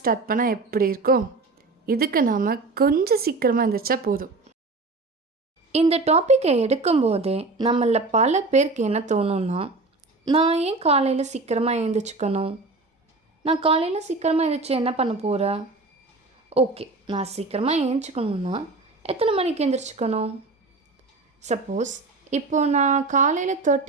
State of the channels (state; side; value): quieter; left; 3.5 dB